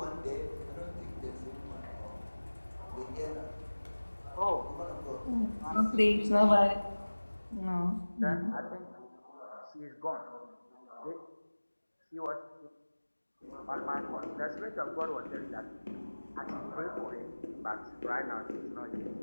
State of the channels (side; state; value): both; inverted; correlation -1.00